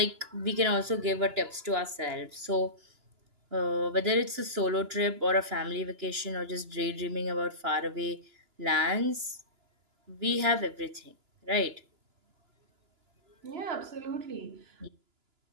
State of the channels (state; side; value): late; left; 2.9 ms